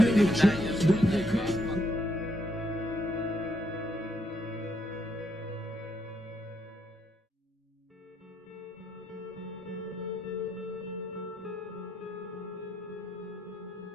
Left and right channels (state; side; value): normal; both; correlation 0.76